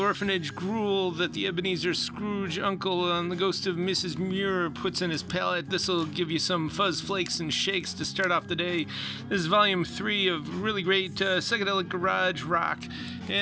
gruel that the Ebenezer Scrooge uncle on the ghost of Mrs. Muir puts in his palate, this'll give you some fuzz flakes and shakes to start off the day. This is volume 3 of really great psychedelic garage rock,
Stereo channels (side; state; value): both; identical; correlation 1.00